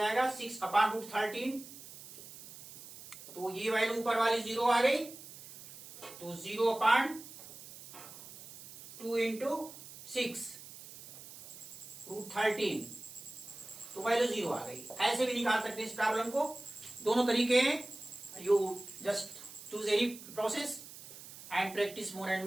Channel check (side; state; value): right; noise; hiss, 15 dB below the sound